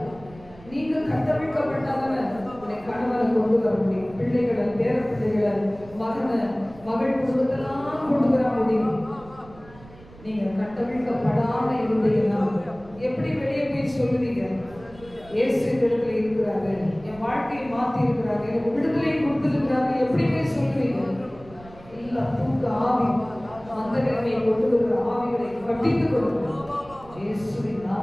நீங்க கட்டமைக்கப்பட்டாதான உடைய கணவனை கொண்டு வர முடியும், பிள்ளைகளை, பேர பிள்ளைகளை, மகனை, மகள் குடும்பத்தெல்லாம் கொண்டு வர முடியும். நீங்க கட்டமைக்கப்படாம இருந்தீங்கன்னா எப்படி வெளியே போய் சொல்லுவீங்க? இயேசு இடத்துல இருக்கிறாரு, என் வாழ்க்கையை மாத்தி இருக்கிறாரு, எனக்கு விடுதலை கொடுத்திருக்கிறாரு, எப்படி போய் சொல்லுவீங்க? இல்ல, தூக்க ஆவி, அந்த நிலைமையை கொண்டு வருகிற ஆவிகளை கட்டித்துக் கொள்ளுங்கள். இயேசுவின்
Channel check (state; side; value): noise; right; rumble, 21 dB below the sound